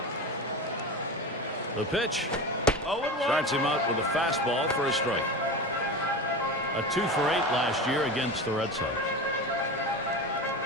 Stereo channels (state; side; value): normal; both; correlation 0.26